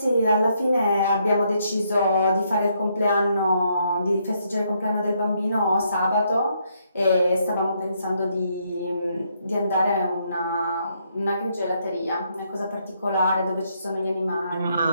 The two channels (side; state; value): both; inverted; correlation -0.74